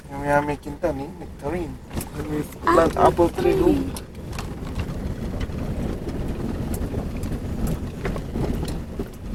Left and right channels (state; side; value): identical; both; correlation 1.00